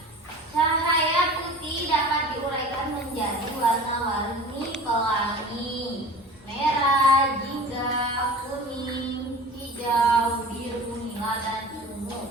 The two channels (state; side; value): normal; both; correlation 0.39